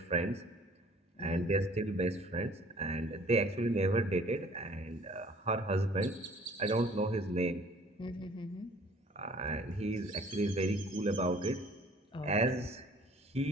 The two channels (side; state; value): both; normal; correlation 0.53